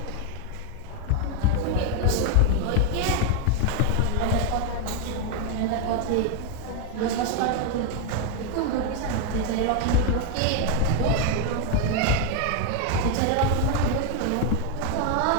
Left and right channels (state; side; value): different; both; correlation 0.01